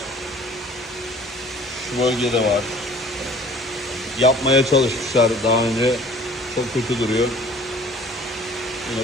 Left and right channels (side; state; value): both; normal; correlation 0.50